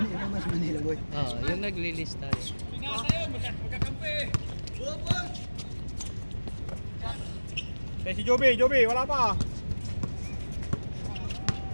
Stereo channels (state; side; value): inverted; both; correlation -1.00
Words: mas Manila boy? Oo, yung naglilista. Si Joby, wala pa.